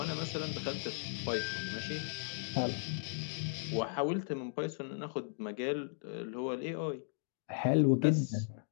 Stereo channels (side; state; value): right; silent; digital silence